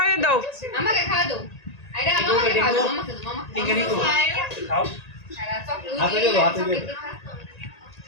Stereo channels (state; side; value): late; right; 1.9 ms